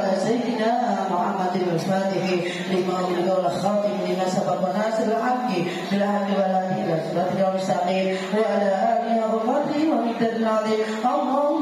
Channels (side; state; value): both; identical; correlation 1.00